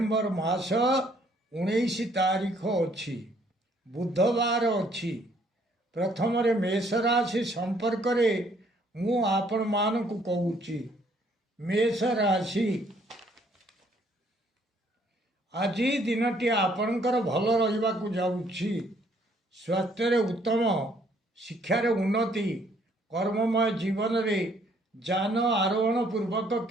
मास 19 तारीख अच्छी बुधवार अच्छी प्रथम मेष राशि संपर्क मु आपण मानकु कहूची मेष राशि आज दिनटी आपणकर भल रहिबा जाऊँगी स्वास्थ्य उत्तम शिक्षार उन्नति कर्ममय जीवन रे जान आरोहण पूर्वक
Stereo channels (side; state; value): both; normal; correlation 0.65